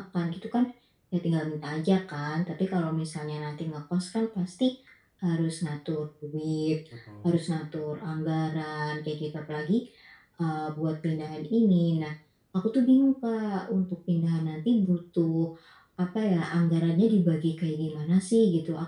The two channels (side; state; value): both; identical; correlation 1.00